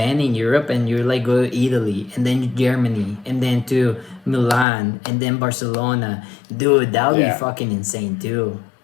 in Europe and you're like go to Italy and then Germany and then to Milan and then Barcelona. Dude, that would Yeah. be fucking insane too.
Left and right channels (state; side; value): drops out; right; at 4.7 s